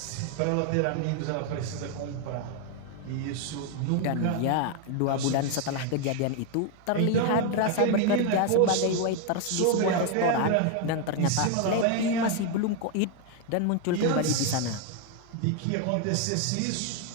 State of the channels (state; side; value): different; both; correlation 0.01